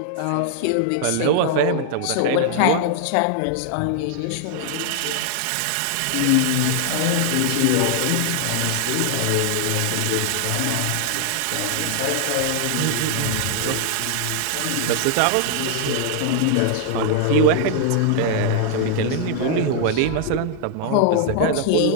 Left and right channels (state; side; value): different; both; correlation 0.00